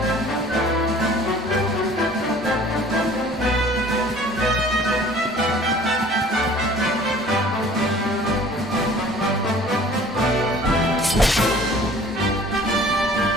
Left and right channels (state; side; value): normal; both; correlation 0.49